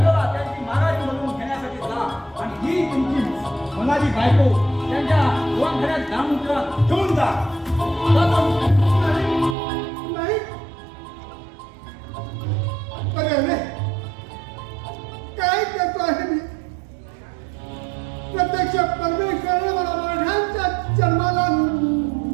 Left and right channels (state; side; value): drops out; left; at 9.6 s